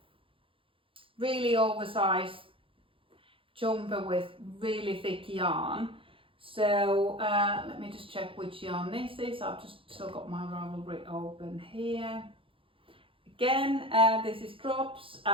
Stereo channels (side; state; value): left; late; 0.26 ms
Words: really oversized jumper with really thick yarn. So let me just check which yarn this is. I've just still got my Ravelry open here. again, this is Drops,